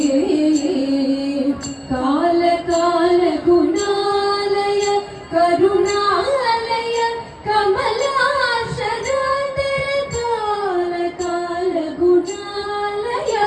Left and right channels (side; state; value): both; identical; correlation 1.00